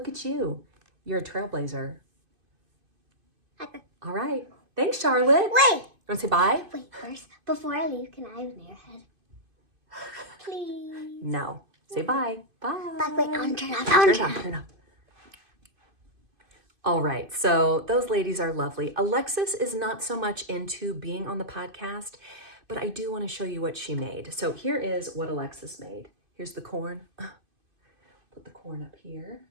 at you. You're a trailblazer. All right. Thanks, Charlotte. Wait. You want to say bye? Wait, first, before I leave, can I have an airhead? Please. No. Say bye. Bye. But wait, I'm turn off. Turn up. All right, so those ladies are lovely. Alexis is not so much into being on the podcast, but I do want to show you what she made. So here is what Alexis made. Here's the corn. Put the corn up here.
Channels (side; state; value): left; late; 2.5 ms